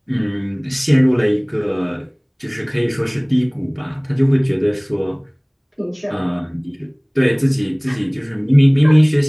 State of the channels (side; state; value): both; identical; correlation 1.00